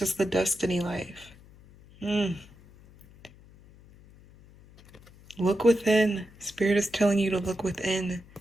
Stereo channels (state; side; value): noise; left; hum, 24 dB below the sound